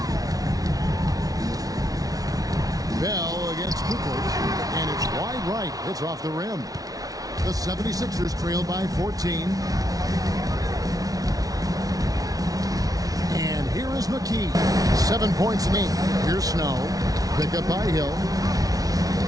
Bell against Kukoc, and it's wide right. It's off the rim. The 76ers trail by 14. And here is McKee. 7 points in 8. Here's Snow. Pick up by Hill.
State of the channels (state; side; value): late; left; 0.18 ms